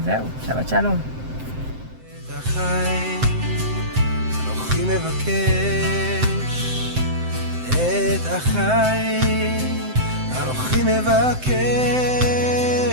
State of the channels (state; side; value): late; left; 7.8 ms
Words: זהו, שבת שלום. את החיים, אנוכי מבקש את החיים, אנוכי מבקש